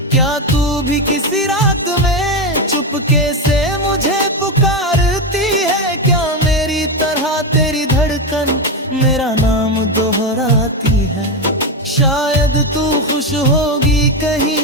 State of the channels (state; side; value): normal; both; correlation 0.12